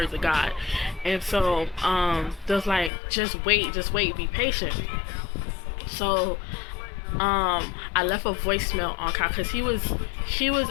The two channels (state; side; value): drops out; right; at 2.9 s